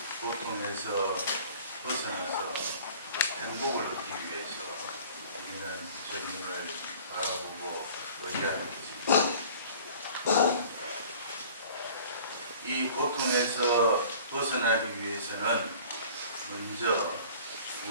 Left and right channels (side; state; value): both; inverted; correlation -0.47